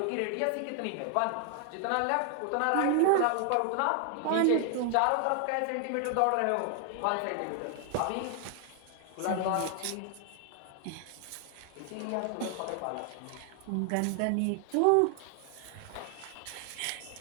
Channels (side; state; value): both; different; correlation 0.00